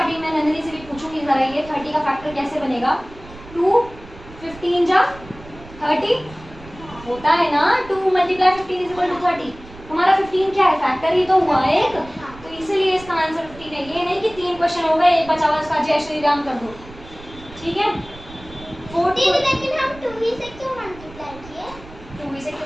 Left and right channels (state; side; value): noise; right; rumble, 19 dB below the sound